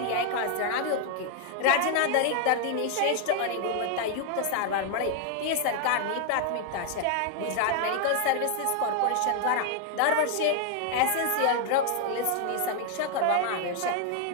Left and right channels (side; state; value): both; different; correlation 0.00